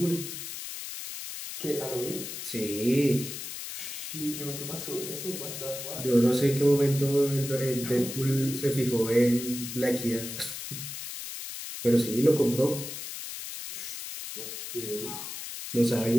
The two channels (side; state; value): left; noise; hiss, 8 dB below the sound